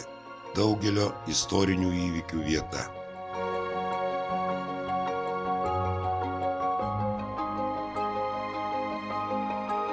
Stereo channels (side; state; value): both; identical; correlation 1.00